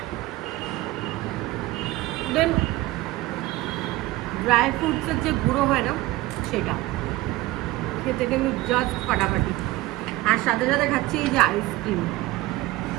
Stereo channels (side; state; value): left; quieter; 18.3 dB